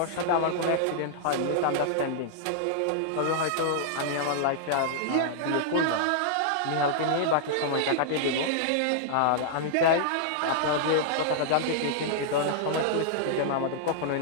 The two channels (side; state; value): both; different; correlation -0.01